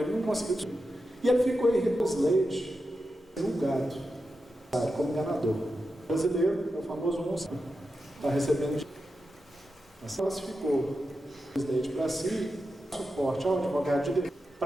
não conseguiu descobrir. E ele ficou em Slade, julgado, como enganador. O brasileiro, é o famoso monstro, está recebendo. Mas classificou o Slade para si, suporte ao advogado de direito,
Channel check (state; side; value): normal; both; correlation 0.90